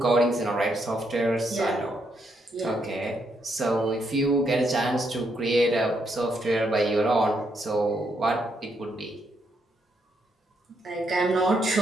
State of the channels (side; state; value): both; normal; correlation 0.77